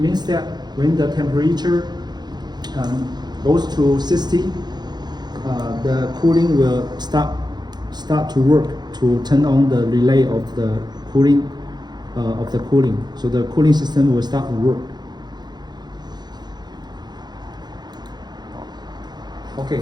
that when the temperature goes to 60, the cooling will start to work to turn on the relay of the cooling So the cooling system will start to work. Okay,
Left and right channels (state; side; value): late; left; 0.20 ms